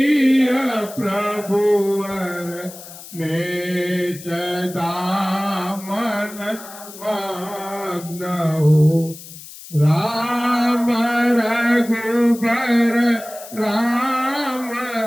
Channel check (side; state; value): left; noise; hiss, 16 dB below the sound